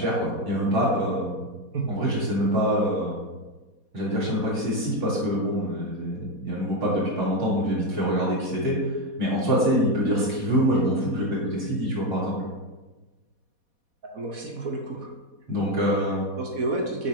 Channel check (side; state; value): left; late; 4.2 ms